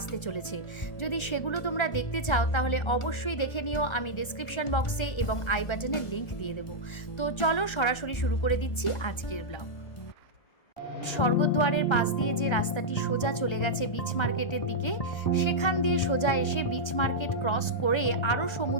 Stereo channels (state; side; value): late; right; 1.3 ms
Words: চলেছে। যদি সেগুলো তোমরা দেখতে চাও তাহলে অবশ্যই দেখে নিও, আমি ডেসক্রিপশন বক্সে এবং আই বাটনে লিংক দিয়ে দেবো। তো চলো সরাসরি শুরু করে দিচ্ছি আজকের ব্লগ। স্বর্গদ্বারের পাশ দিয়ে যে রাস্তাটি সোজা চলে গেছে বিচ মার্কেটের দিকে, সেখান দিয়ে সোজা এসে বিচ মার্কেট ক্রস করে আরও